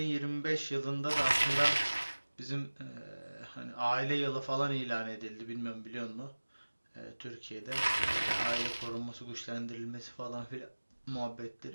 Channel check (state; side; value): inverted; both; correlation -1.00